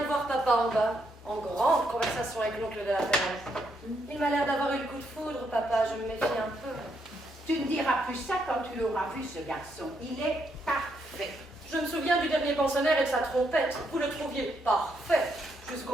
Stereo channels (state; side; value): normal; both; correlation 0.77